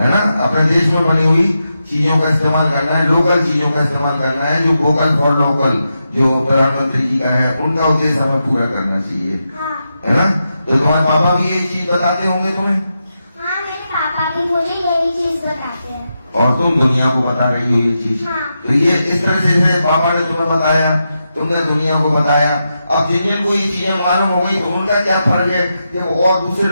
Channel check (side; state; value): both; inverted; correlation -0.87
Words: ना। अपने देश में बनी हुई चीजों का इस्तेमाल करना है, लोकल चीजों का इस्तेमाल करना है, जो वोकल फॉर लोकल जो प्रधानमंत्री जी का है, उनका उद्देश्य हमें पूरा करना चाहिए, है ना। तो तुम्हारे पापा भी यही चीज बताते होंगे तुम्हें? हाँ, मेरे पापा भी मुझे यही चीज बताते हैं और तुम दुनिया को बता रही हो ये चीज। तो ये इस तरह से पापा ने तुम्हें बताया, तुमने दुनिया को बताया। अब जिनको ये चीजें मालूम हो गई तो उनका क्या फर्ज है कि वो और दूसरे